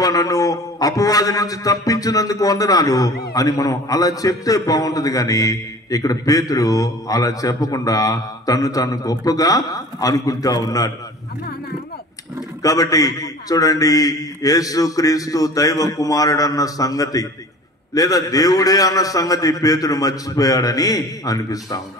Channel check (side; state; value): both; normal; correlation 0.42